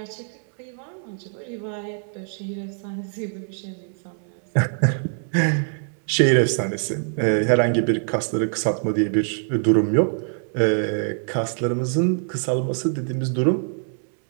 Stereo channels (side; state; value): left; silent; digital silence